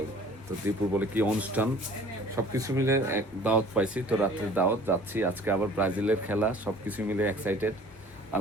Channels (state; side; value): normal; both; correlation 0.49